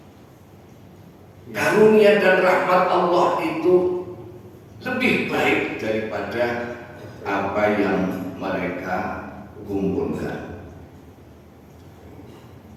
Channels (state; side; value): identical; both; correlation 1.00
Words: Karunia dan rahmat Allah itu lebih baik daripada apa yang mereka kumpulkan.